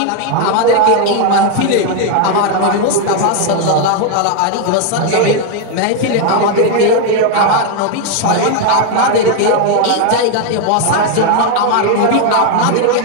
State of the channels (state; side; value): different; both; correlation 0.01